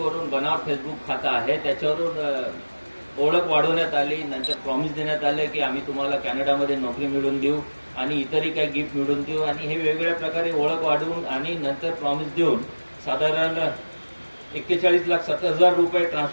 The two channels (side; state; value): both; inverted; correlation -1.00